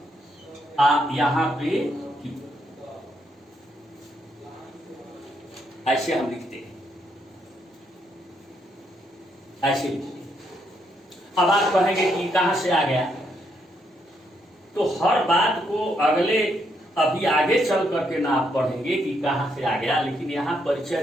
यहां पे Q। ऐसे हम लिखते हैं, ऐसे लिखते हैं। अब आप कहेंगे कि कहां से आ गया? तो हर बात को अगले अभी आगे चल करके ना आप पढ़ेंगे कि कहां से आ गया, लेकिन यहां परिचय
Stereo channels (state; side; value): normal; both; correlation 0.76